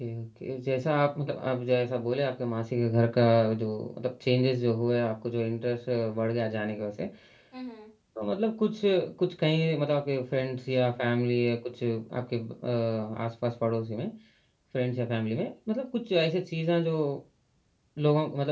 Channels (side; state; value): both; identical; correlation 1.00